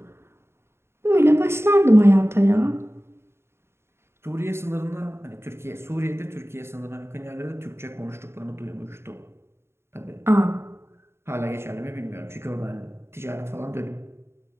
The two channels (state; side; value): late; left; 0.12 ms